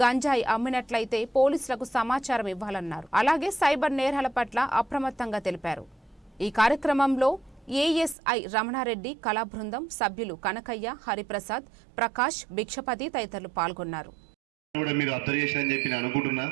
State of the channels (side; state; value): left; drops out; at 8.2 s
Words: గంజాయి అమ్మినట్లయితే పోలీసులకు సమాచారం ఇవ్వాలన్నారు. అలాగే సైబర్ నేరాల పట్ల అప్రమత్తంగా తెలిపారు. ఈ కార్యక్రమంలో ఏఎస్ఐ రమణారెడ్డి, కళా బృందం సభ్యులు కనకయ్య, హరిప్రసాద్, ప్రకాష్, భిక్షపతి తదితరులు పాల్గొన్నారు. మీరు అర్థం చేశారని చెప్పి నేను అనుకుంటున్నా.